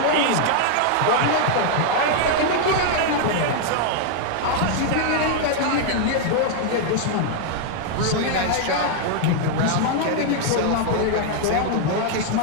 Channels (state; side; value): different; both; correlation 0.00